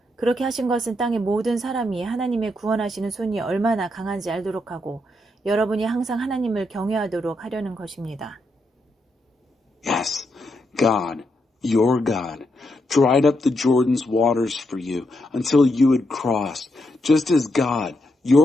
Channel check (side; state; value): both; normal; correlation 0.81